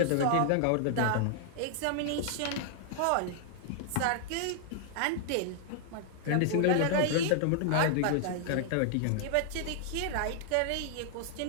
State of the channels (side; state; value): both; different; correlation 0.00